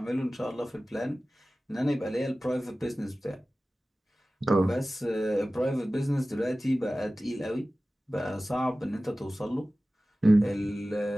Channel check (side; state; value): both; normal; correlation 0.96